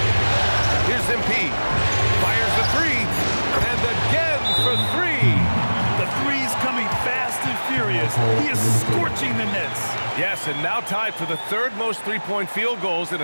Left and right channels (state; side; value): inverted; both; correlation -1.00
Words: Here's MP. Fires the three. And again for 3. The three's coming fast and furious. He is scorching the nets. Yes, and now tied for the 3rd most three-point field goals in